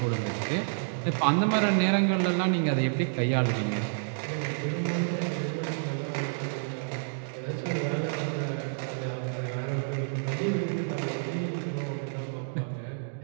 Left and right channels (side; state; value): left; silent; digital silence